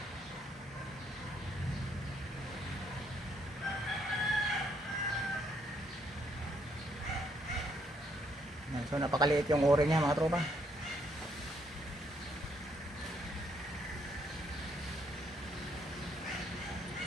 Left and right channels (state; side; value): normal; both; correlation 0.71